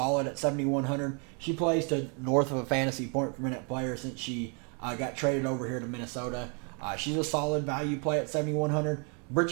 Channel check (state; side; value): quieter; left; 37.0 dB